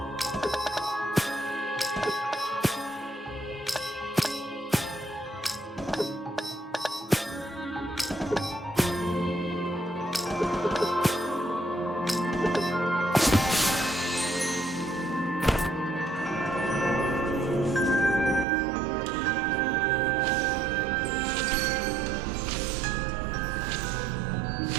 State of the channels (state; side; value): drops out; left; at 18.4 s